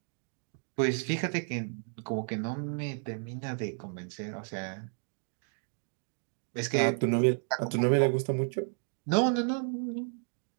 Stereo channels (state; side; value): silent; left; 56 dB below the other